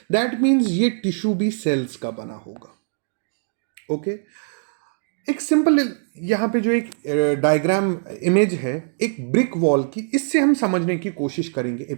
दैट मीन्स ये टिश्यू भी सेल्स का बना होगा। ओके एक सिंपल यहाँ पे जो एक डायग्राम इमेज है एक ब्रिक वॉल की, इससे हम समझने की कोशिश करेंगे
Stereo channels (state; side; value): silent; left; digital silence